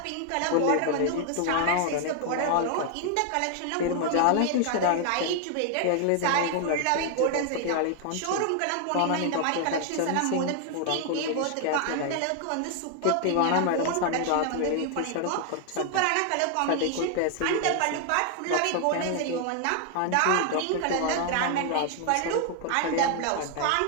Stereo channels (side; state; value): both; different; correlation 0.00